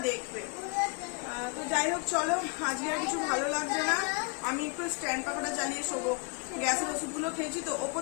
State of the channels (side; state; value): right; quieter; 35.5 dB